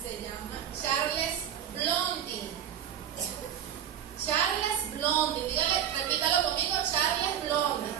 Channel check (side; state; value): left; quieter; 9.8 dB